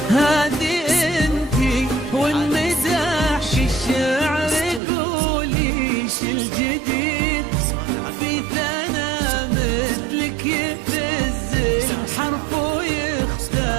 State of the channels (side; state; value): left; drops out; at 4.8 s